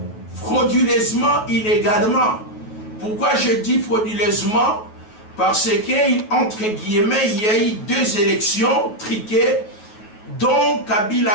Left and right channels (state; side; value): late; right; 9.3 ms